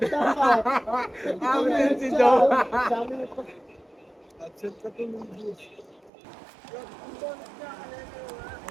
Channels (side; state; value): left; drops out; at 6.1 s